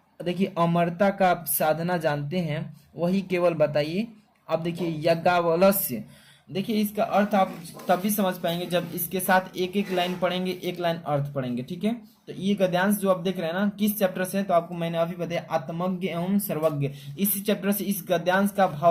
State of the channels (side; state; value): both; identical; correlation 1.00